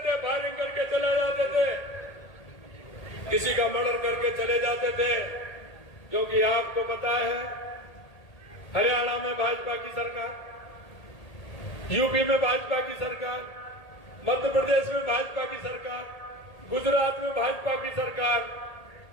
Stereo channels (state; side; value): late; right; 1.8 ms